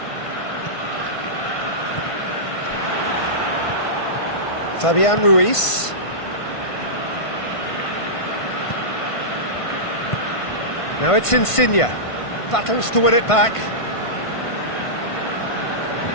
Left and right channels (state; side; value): late; right; 1.5 ms